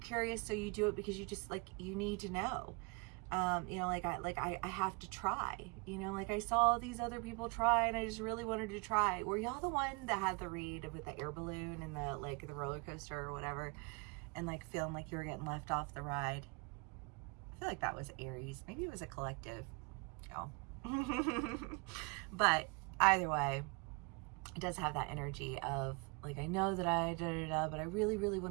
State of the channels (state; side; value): quieter; left; 30.8 dB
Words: so you do it because you just like, you need to know. I have to try, like I saw these other people try and I just really wanted to try. Were y'all the one that had the read with the air balloon and the like the roller coaster or whatever, and like feeling like you were getting left off the ride? I feel like that was Aries. Maybe it was a collective. Oh. But either way, it does have that energy of like, I know that I but I really, really